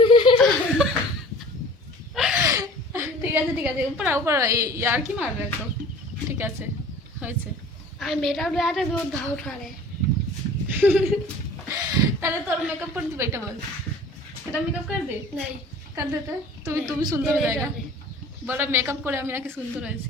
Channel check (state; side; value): normal; both; correlation 0.45